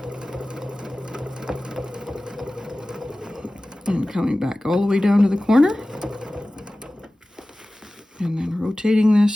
And coming back all the way down to the corner. And then rotating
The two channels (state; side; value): normal; both; correlation 0.97